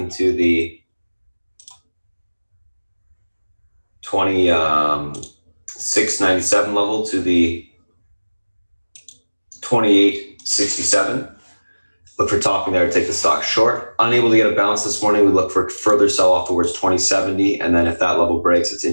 the 26.97 level to the 28.67. Look for topping there to take the stock short. Unable to get a bounce this morning, we look for further sell off towards 2070, and then if that level breaks, it's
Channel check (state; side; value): inverted; both; correlation -1.00